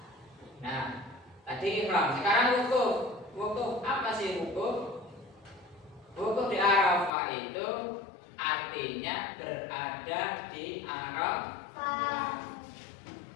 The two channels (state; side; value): drops out; right; at 7.1 s